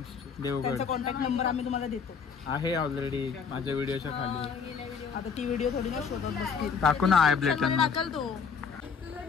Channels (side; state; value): right; quieter; 6.0 dB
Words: त्यांचा कॉन्टॅक्ट नंबर आम्ही तुम्हाला देतो. आहे ऑलरेडी माझ्या व्हिडिओच्या खाली. आता ती व्हिडिओ थोडी ना शोधत बसतील. टाकू ना आय ब्लेटन. टाकल तो.